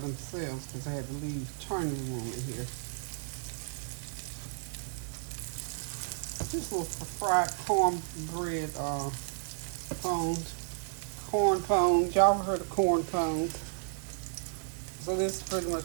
because I had to leave turning room in here. This was fried cornbread pones. Corn pones. Y'all ever heard of corn pones? So this is pretty much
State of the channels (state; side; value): silent; left; 56 dB below the other